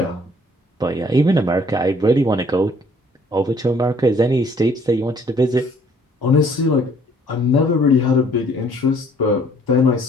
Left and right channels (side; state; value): both; normal; correlation 0.60